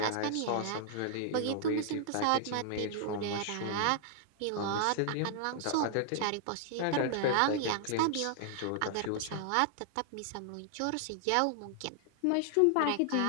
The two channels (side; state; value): both; different; correlation -0.01